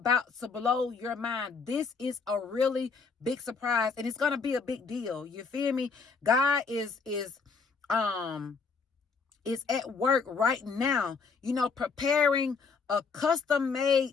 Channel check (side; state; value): right; quieter; 4.9 dB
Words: to blow your mind. This is a really big surprise, and it's going to be a big deal. You feel me? God is at work right now, preparing a